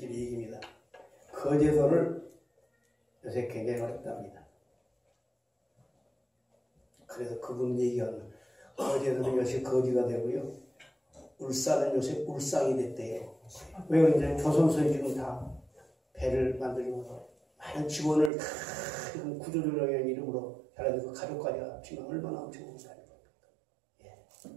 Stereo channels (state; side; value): drops out; left; at 18.3 s